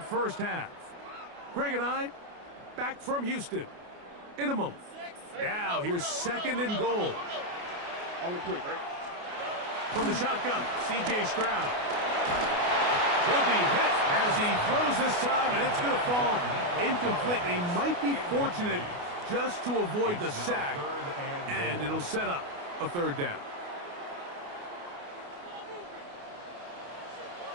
first half. Greg and I back from Houston in a moment. Now here's second and goal. On the quick, right? From the shotgun, C.J. Stroud. He'll be hit as he throws this time, and it's going to fall incomplete. He might be fortunate just to avoid the sack, and it'll set up a third down.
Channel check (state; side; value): late; left; 29 ms